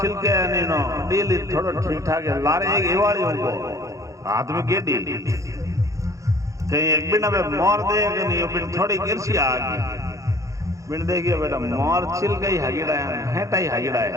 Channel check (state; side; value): late; left; 0.15 ms